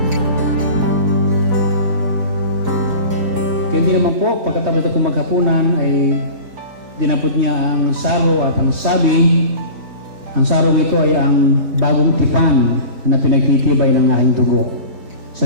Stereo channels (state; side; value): late; left; 4.5 ms